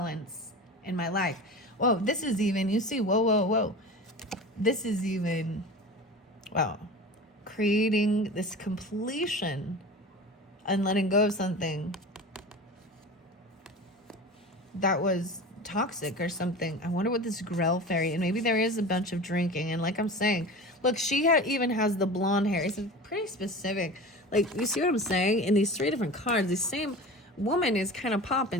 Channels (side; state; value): both; normal; correlation 0.34